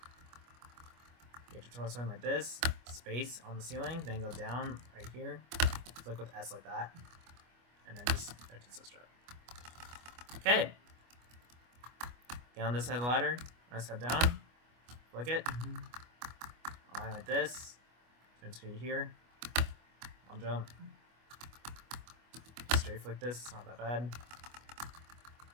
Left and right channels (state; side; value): late; left; 25 ms